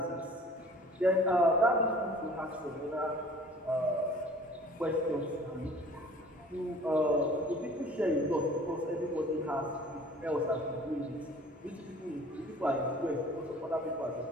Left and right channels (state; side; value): normal; both; correlation 0.49